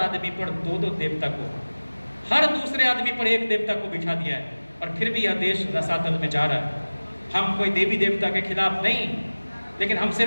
पर 2-2 देवता को, हर दूसरे आदमी पर एक देवता को बिठा दिया है। और फिर भी यह देश रसातल में जा रहा है। हम कोई देवी देवता के खिलाफ नहीं, लेकिन हम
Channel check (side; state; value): both; inverted; correlation -1.00